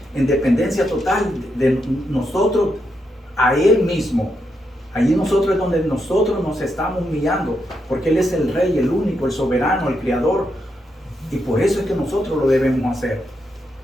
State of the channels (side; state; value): both; normal; correlation 0.82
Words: en dependencia total de nosotros a Él mismo. Allí nosotros es donde nosotros nos estamos humillando, porque Él es el Rey, el único, el soberano, el Creador, y por eso es que nosotros lo debemos hacer.